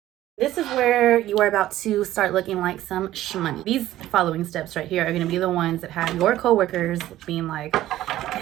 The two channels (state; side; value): quieter; left; 14.2 dB